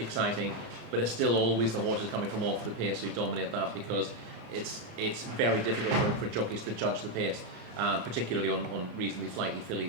but it's still always the horses coming from off the pace who dominate that, because it's very difficult for jockeys to judge the pace, particularly on reasonably flighty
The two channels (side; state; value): left; late; 34 ms